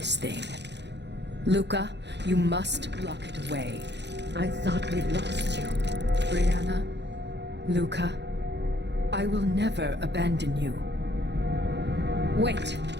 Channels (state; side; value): late; left; 0.50 ms